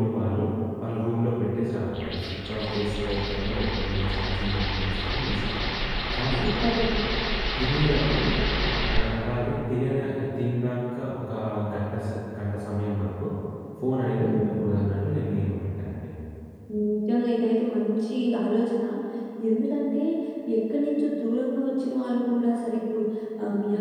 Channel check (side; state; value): both; identical; correlation 1.00